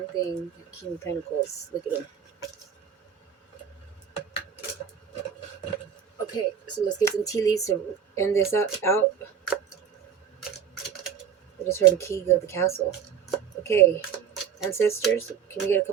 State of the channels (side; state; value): left; quieter; 7.7 dB